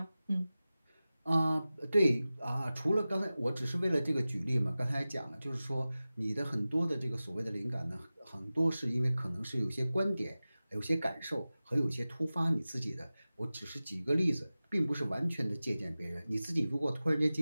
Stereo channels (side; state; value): both; inverted; correlation -0.96